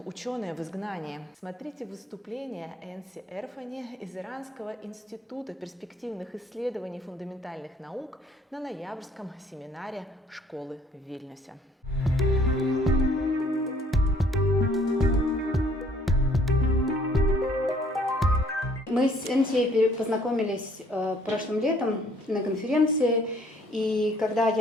ученые в изгнании. Смотрите выступление Энси Эрфани из Иранского института перспективных исследований фундаментальных наук на ноябрьском семинаре школы в Вильнюсе. Мы с Энси познакомились прошлым летом на конференции, и когда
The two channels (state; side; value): normal; both; correlation 0.60